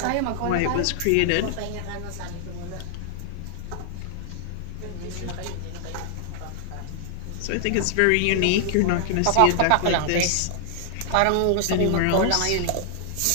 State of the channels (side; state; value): both; different; correlation 0.00